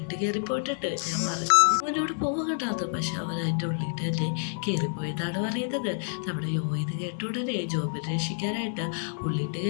കയറിപ്പോയിട്ടിട്ട് ഞാൻ പറഞ്ഞു അവനോട് പോകണ്ടാന്ന്. പക്ഷെ അവൻ അതിൻ്റെ ഉള്ളിട്ട് തന്നെ കയറിപ്പോയെന്നാണ് പറയുന്നത്. നമ്മുടെ യോ ഇത് കേട്ട ഉടനെ ജോബിനെ രക്ഷിക്കാനായിട്ട് ഉള്ളിട്ട്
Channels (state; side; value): silent; right; digital silence